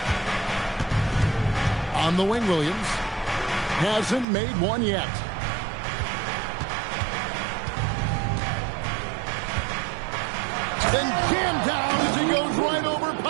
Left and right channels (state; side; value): drops out; left; at 4.2 s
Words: On the wing, Williams. Hasn't made one yet. Then jammed down as he goes right over